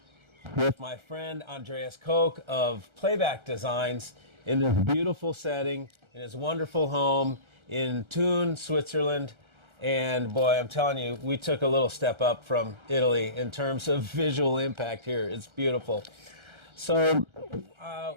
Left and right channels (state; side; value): late; left; 1.3 ms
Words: with my friend Andreas Koch of Playback Designs in this beautiful setting, in his wonderful home in Thun, Switzerland. And boy, I'm telling you, we took a little step up from Italy in terms of visual impact here. It's beautiful. So